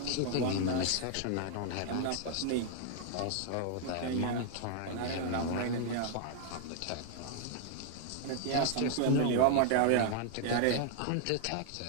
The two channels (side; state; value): both; different; correlation 0.00